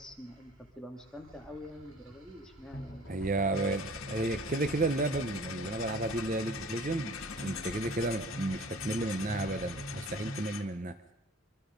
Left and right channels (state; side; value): normal; both; correlation 0.47